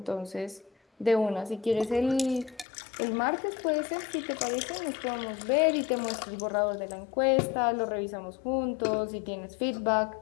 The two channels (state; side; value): drops out; right; at 2.7 s